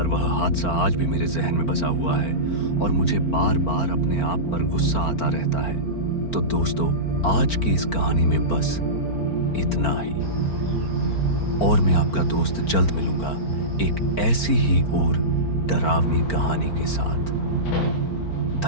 वह हादसा आज भी मेरे जहन में बसा हुआ है और मुझे बार बार अपने आप पर गुस्सा आता रहता है। तो दोस्तों, आज की इस कहानी में बस इतना ही और मैं आपका दोस्त जल्द मिलूंगा एक ऐसी ही और डरावनी कहानी के साथ।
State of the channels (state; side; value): late; right; 4.4 ms